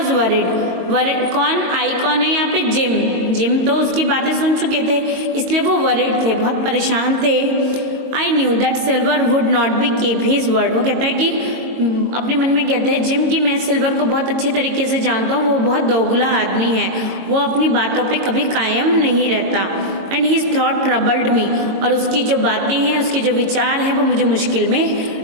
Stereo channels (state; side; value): late; left; 22 ms